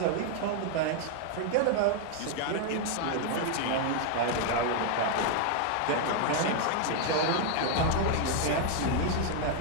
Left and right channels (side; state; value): both; different; correlation 0.00